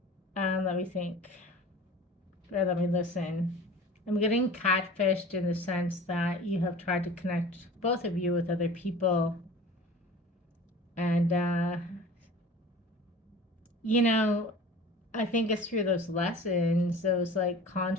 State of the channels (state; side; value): normal; both; correlation 0.41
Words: Let me think. Or let me listen. I'm getting catfished in the sense that you have tried to connect, both of you, with other people. And, I think it's through those lessons, those like